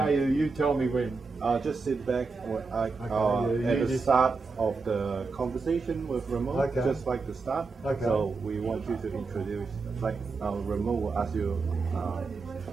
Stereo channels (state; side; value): quieter; left; 4.3 dB